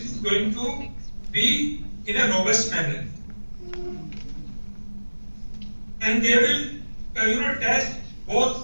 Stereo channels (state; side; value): inverted; both; correlation -1.00